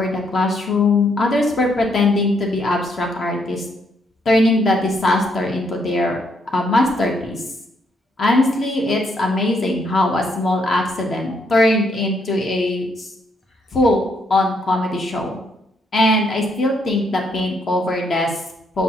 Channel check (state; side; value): normal; both; correlation 0.74